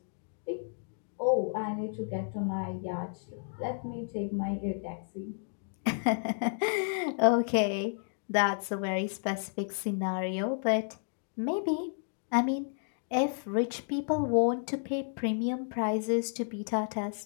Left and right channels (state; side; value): silent; right; digital silence